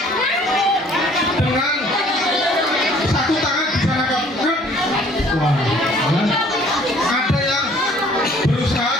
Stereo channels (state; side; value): normal; both; correlation 0.56